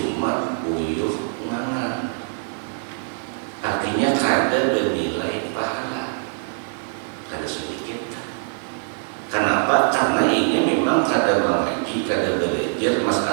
uyuh ngangan, artinya kada bernilai pahala, kada sedikit. Kenapa? Karena ini memang kada mengaji, kada belajar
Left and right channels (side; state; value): left; silent; 63 dB below the other